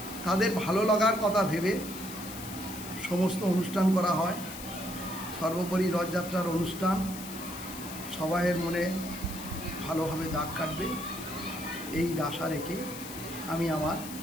তাদের ভালো লাগার কথা ভেবে সমস্ত অনুষ্ঠান করা হয়। সর্বোপরি রথযাত্রার অনুষ্ঠান সবাইয়ের মনে ভালোভাবে দাগ কাটবে, এই আশা রেখে আমি আমার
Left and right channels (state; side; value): noise; left; hiss, 11 dB below the sound